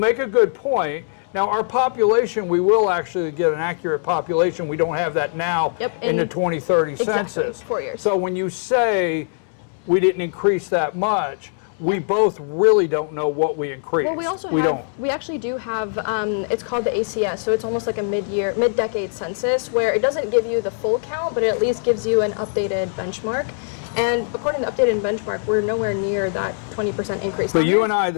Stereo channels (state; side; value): silent; right; 63 dB below the other